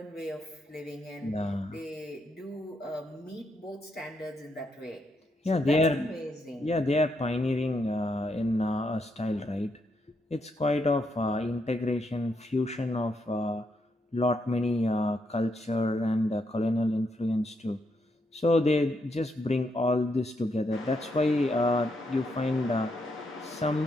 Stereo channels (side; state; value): both; normal; correlation 0.79